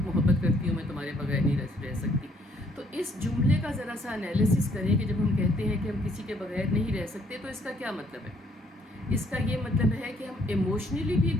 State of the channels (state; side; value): normal; both; correlation 0.66